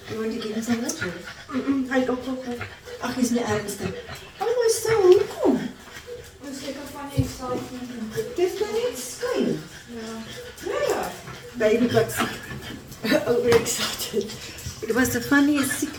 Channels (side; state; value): both; identical; correlation 1.00